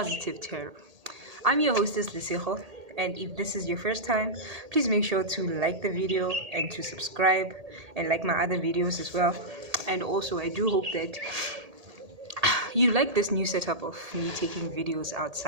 Tarot. I'm your hostess, Lesego, and if this is your first time, please make sure to like the video and to subscribe and like my other videos as well. And also, I do hope that you like this new setup of me taking videos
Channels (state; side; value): late; left; 1.8 ms